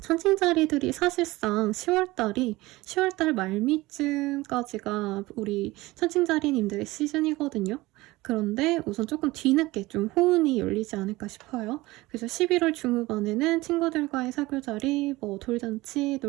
천칭자리들이 사실상 10월달 말미쯤까지가 우리 천칭자리님들의 시즌이거든요. 그런데 우선 조금 뒤늦게 좀 호운이 열리지 않을까 싶어요. 그래서 11월 중후반에는 친구들과의 사교자리, 돌잔치,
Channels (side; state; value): left; quieter; 20.0 dB